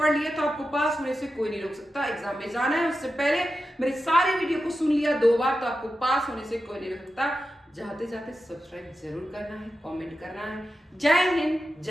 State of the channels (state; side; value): normal; both; correlation 0.91